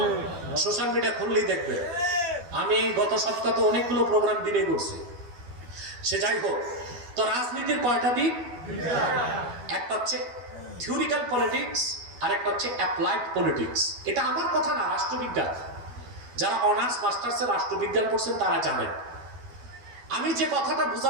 সোশ্যাল মিডিয়া খুললেই দেখবে। আমি গত সপ্তাহে তো অনেকগুলো প্রোগ্রাম দিনে করছি। সে যাই হোক, তো রাজনীতির কয়টা দিক? একটা হচ্ছে থিওরিক্যাল পলিটিক্স, আর একটা হচ্ছে অ্যাপ্লাইড পলিটিক্স। এটা আমার কথা না, রাষ্ট্রবিজ্ঞান। যারা অনার্স মাস্টার্সে রাষ্ট্রবিজ্ঞান পড়ছেন তারা জানেন। আমি যে কথাটা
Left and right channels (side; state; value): left; late; 12 ms